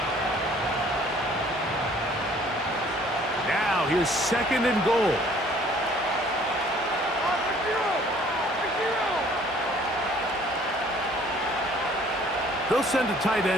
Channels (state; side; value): normal; both; correlation 0.56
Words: Now here's 2nd and goal. They'll send a tight